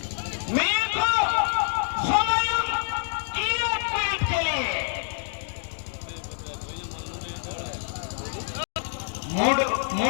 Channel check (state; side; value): silent; right; digital silence